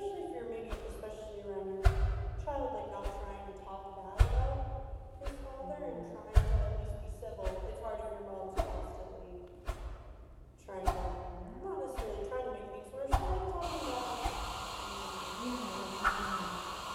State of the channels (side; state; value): both; identical; correlation 1.00